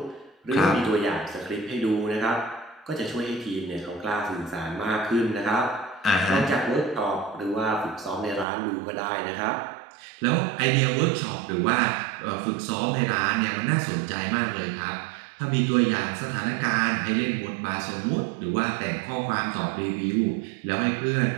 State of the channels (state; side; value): drops out; left; at 8.5 s